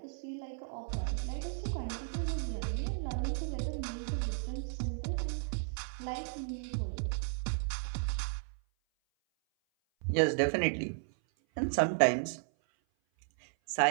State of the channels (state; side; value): silent; left; 55 dB below the other